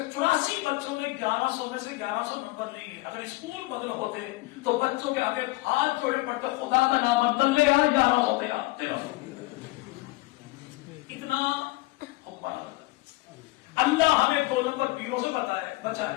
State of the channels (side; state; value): right; quieter; 21.2 dB